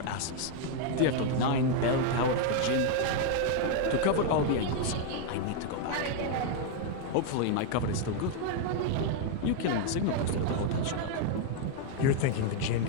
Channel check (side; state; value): both; different; correlation 0.01